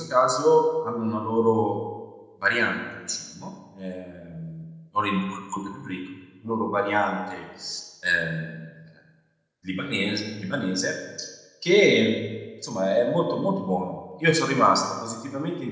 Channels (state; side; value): identical; both; correlation 1.00